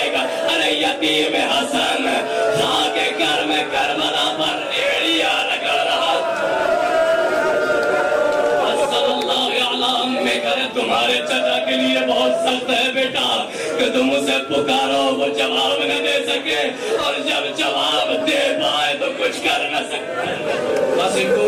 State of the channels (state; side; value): identical; both; correlation 1.00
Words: ارے یتیم حسن خاک گھر میں کربلا پر ریڑیاں رگڑ رہا. میں کرے تمہارے چچا کے لیے بہت سخت ہے بیٹا کہ تم اسے پکارو وہ جواب نہ دے سکے, اور جب جواب دے پائے تو کچھ کر نہ سکے. قاسم کو